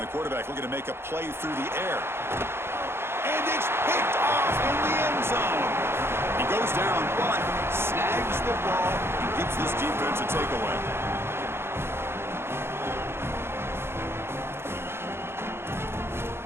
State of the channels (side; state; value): left; late; 0.12 ms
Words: the quarterback looking to make a play through the air. And it's picked off in the end zone. He goes down, but snags the ball and gives this defense a takeaway.